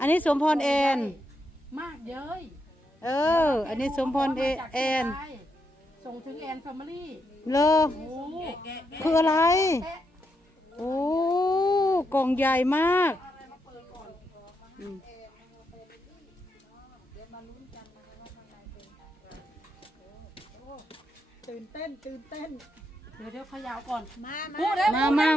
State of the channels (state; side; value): normal; both; correlation 0.81